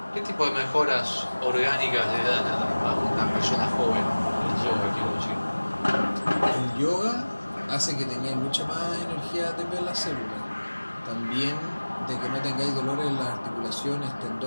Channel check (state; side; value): inverted; both; correlation -1.00